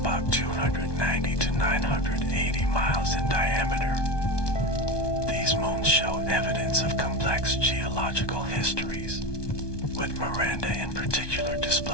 290 to 980 miles in diameter. These moons show evidence of complex geological histories, with Miranda in particular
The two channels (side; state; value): right; late; 1.2 ms